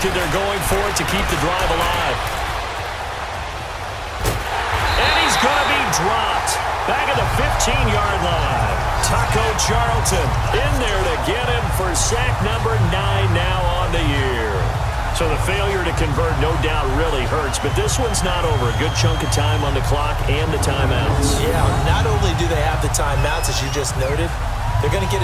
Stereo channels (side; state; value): both; identical; correlation 1.00